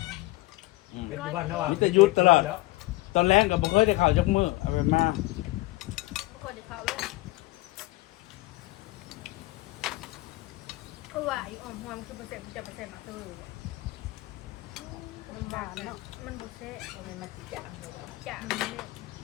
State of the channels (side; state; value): right; quieter; 20.1 dB